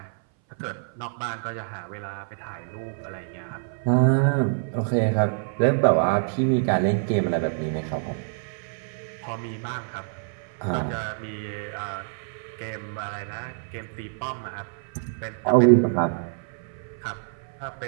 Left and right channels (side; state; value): left; silent; 58 dB below the other